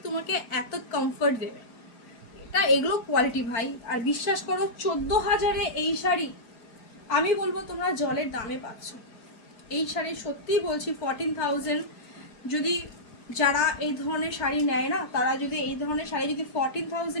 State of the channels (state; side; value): late; right; 4.5 ms